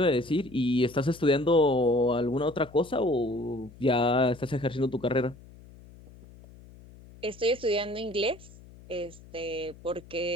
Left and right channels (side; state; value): left; noise; hum, 21 dB below the sound